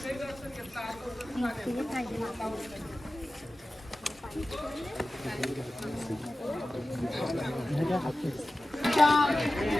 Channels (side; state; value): both; normal; correlation 0.95